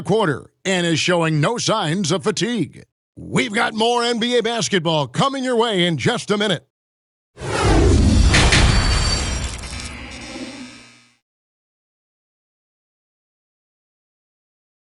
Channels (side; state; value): both; identical; correlation 1.00